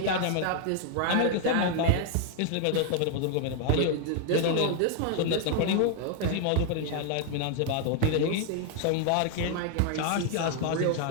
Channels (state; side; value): different; both; correlation 0.00